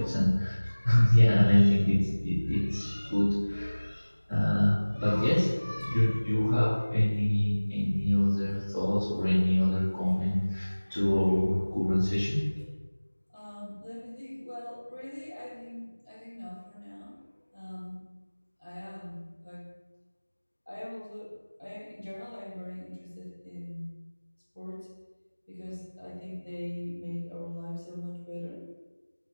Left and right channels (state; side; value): inverted; both; correlation -1.00